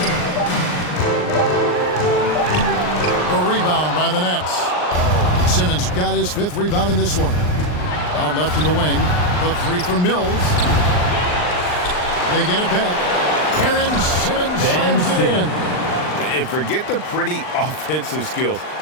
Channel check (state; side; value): late; right; 39 ms